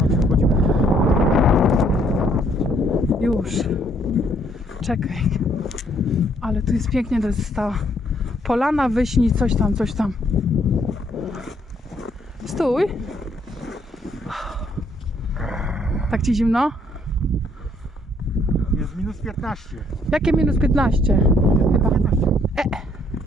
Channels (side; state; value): both; normal; correlation 0.67